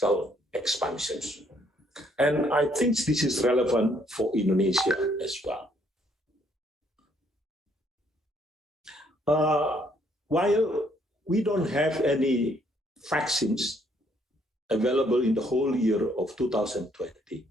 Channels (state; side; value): normal; both; correlation 0.67